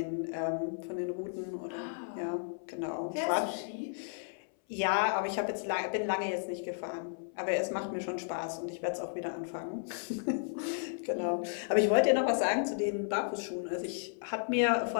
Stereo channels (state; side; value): silent; right; 55 dB below the other